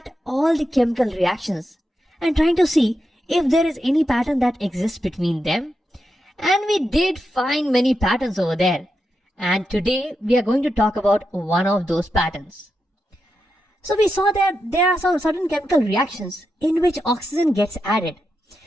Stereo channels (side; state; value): both; normal; correlation 0.87